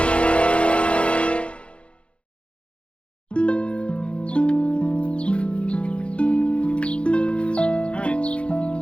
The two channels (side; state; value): right; late; 0.059 ms